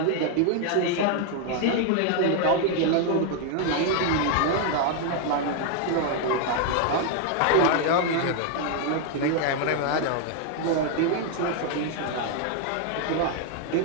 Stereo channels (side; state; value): both; different; correlation 0.00